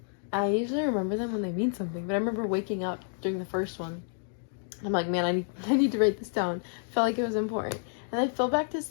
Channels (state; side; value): silent; right; digital silence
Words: I usually remember them when they mean something, but I remember waking up during the first one. I'm like, man, I need to write this down. Felt like it was important. And I fell back to